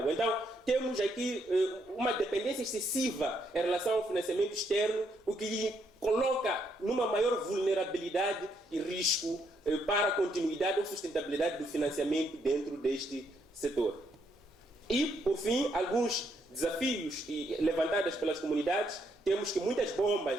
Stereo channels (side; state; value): both; normal; correlation 0.74